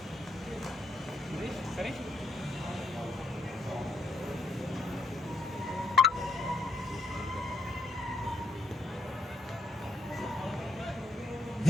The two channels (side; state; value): both; normal; correlation 0.75